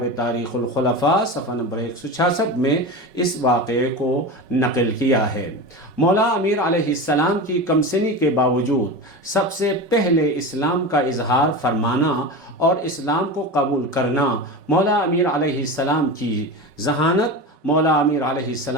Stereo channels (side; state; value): left; late; 5.3 ms